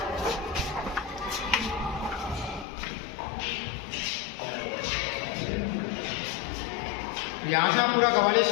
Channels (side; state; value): right; drops out; at 2.7 s